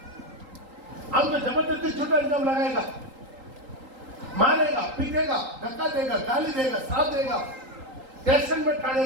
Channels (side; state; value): left; late; 3.8 ms